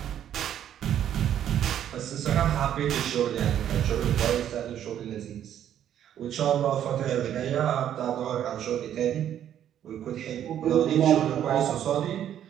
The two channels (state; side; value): quieter; left; 10.4 dB